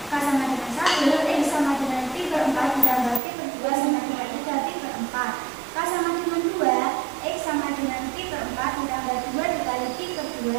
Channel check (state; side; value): drops out; left; at 3.2 s